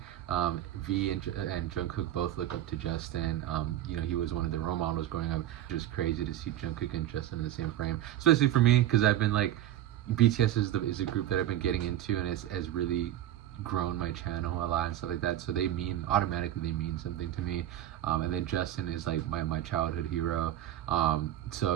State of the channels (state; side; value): quieter; left; 12.4 dB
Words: V and Jungkook both look up to Justin. He was one of the role models growing up. Just crazy to see Jungkook and Justin in the same frame, especially for me, because I've been like, BTS is a group that I've been getting into, and has really grown my channel a lot and stuff like that, so they mean something to me. And then Justin is like my childhood hero,